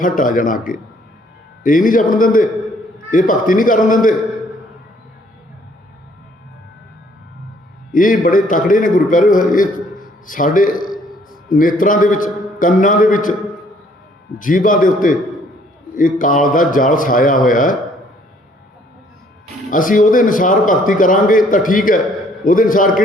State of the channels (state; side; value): normal; both; correlation 0.62